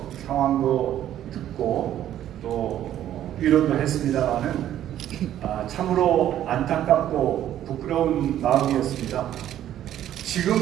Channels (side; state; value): left; quieter; 11.7 dB